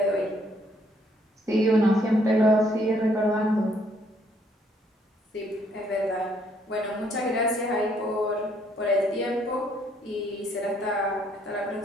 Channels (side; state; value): both; normal; correlation 0.68